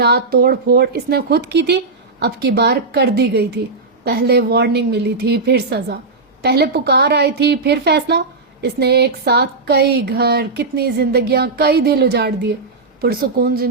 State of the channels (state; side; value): quieter; left; 3.8 dB